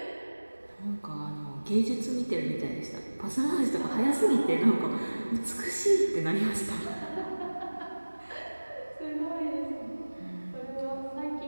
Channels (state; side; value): inverted; both; correlation -1.00